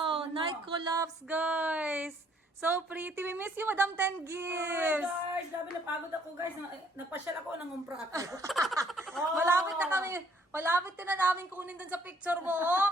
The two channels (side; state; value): both; normal; correlation 0.63